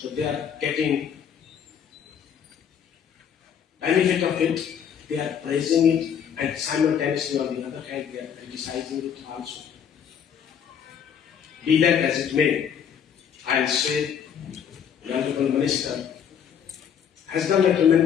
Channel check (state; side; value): quieter; right; 8.2 dB